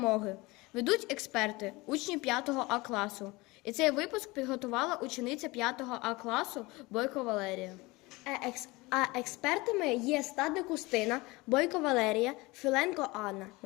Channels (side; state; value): right; quieter; 22.8 dB